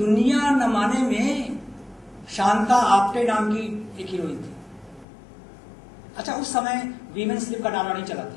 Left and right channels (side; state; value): right; drops out; at 5.1 s